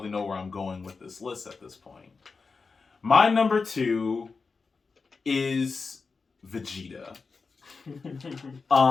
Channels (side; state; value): right; quieter; 4.6 dB